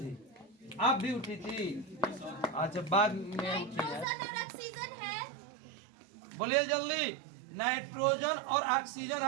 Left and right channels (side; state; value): left; drops out; at 4.0 s